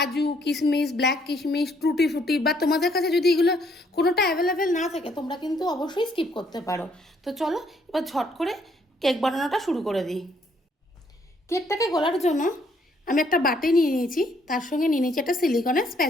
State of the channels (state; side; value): normal; both; correlation 0.68